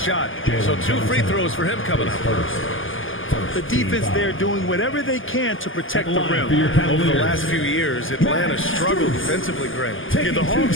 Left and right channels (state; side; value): late; right; 0.58 ms